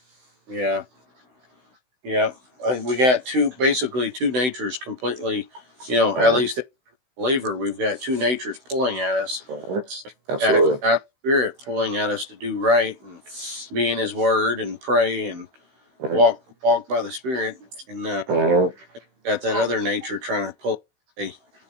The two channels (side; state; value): left; late; 16 ms